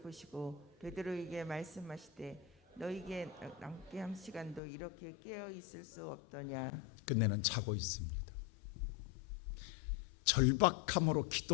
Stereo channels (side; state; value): right; drops out; at 4.6 s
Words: 베드로에게 말씀하시되 너희에게 남게 한 시간도 이렇게 깨어 있을 수 없더냐. 끝내는 자고 있습니다. 절박함으로